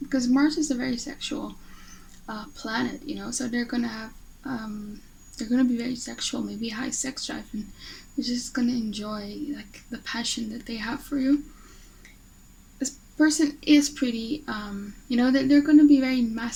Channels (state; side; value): identical; both; correlation 1.00